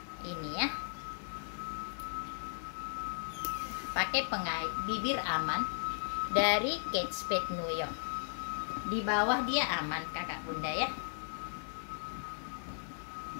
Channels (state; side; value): silent; right; digital silence